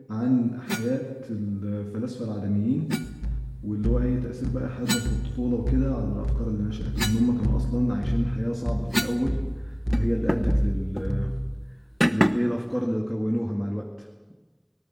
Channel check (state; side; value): identical; both; correlation 1.00